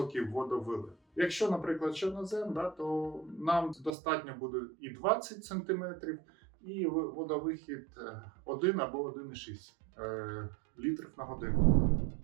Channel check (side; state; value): left; drops out; at 3.9 s